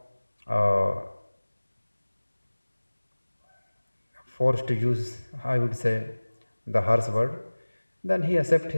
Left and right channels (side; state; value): both; inverted; correlation -1.00